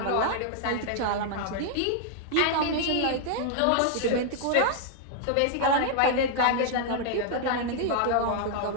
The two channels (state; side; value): different; both; correlation -0.01